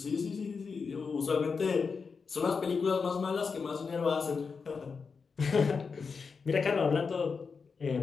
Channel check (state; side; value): quieter; right; 5.2 dB